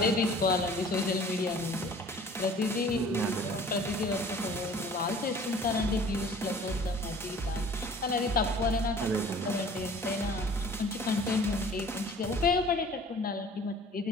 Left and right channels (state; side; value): normal; both; correlation 0.48